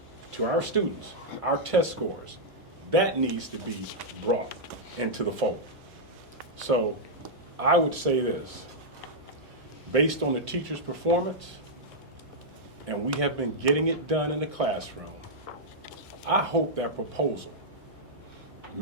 to our students, our test scores, that needs to be brought into the fold. So I would say this, based on the teacher's performance, and we have been getting it done in the classroom, I hope that proposal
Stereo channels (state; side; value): normal; both; correlation -0.07